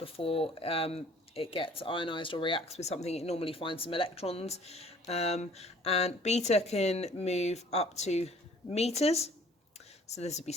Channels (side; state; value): both; normal; correlation 0.54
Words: it gets ionized or reacts with something. It normally finds some electrons. And beta can move up to meters. So this would be